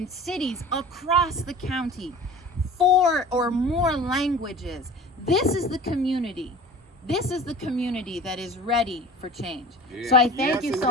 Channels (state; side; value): normal; both; correlation 0.40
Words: cities across the county, 4 or more languages. This is the community. This is the community that is ready for change. So I thank you so